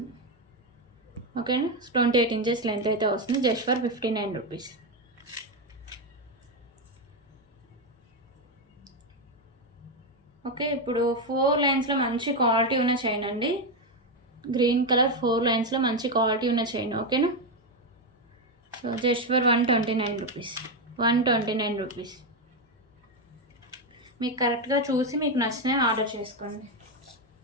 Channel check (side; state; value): both; normal; correlation 0.07